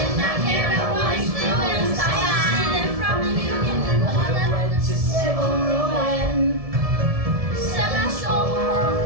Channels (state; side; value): late; left; 1.7 ms